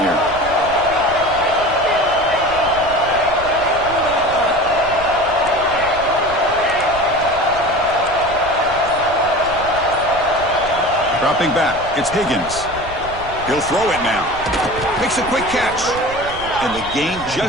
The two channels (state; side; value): noise; right; rumble, 15 dB below the sound